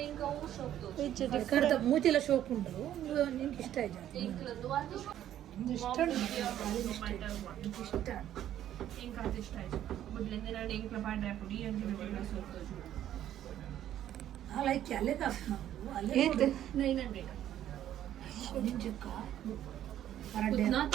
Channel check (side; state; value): left; quieter; 11.6 dB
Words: ఇంకా షోಕ್ದು Which ಕಡ್ದ different. ಮೂತಿಲ ಶೋಕ್ ಉಂಟು ನಿನ್ಗೆ ಇಷ್ಟ ಆಯ್ತು ಪಿಂಕ್ಲದ್ದು ಅದು ಇಷ್ಟ ಇಷ್ಟ ఇంకా అది ఇಷ್ಟ ಆಯ್ತು ಬುಡ್ಲಿಂದ ನಾನು ಇಂಕ್ಲ ಪಾಡ್ರೆ ಪುಡಿ ಅಂತ ಬಿಟ್ಟು ಸೋತು ಲೈಕ್ ಅಲ್ಲೇ ಕಾಸು ನಾವು ಅಲ್ಲೇ Eight. 900 ನಿಂಜಕ್ಕ ಪರಡೆ ನಾತ